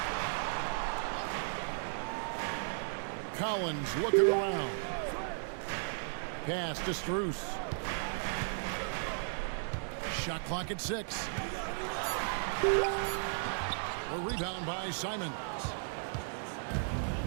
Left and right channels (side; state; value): left; silent; 54 dB below the other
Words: Collins looking around. Pass to Strus. Shot clock at 6. A rebound by Simons.